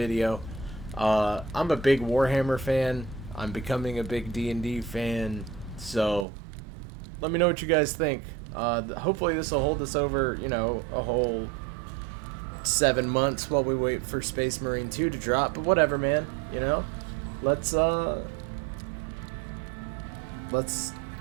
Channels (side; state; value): left; drops out; at 6.2 s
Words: I'm a big Warhammer fan. I'm becoming a big D&D fan. So let me know what you guys think. Hopefully this will hold us over, you know, a whole 7 months while we wait for Space Marine 2 to drop. But whatever, man. You know, let's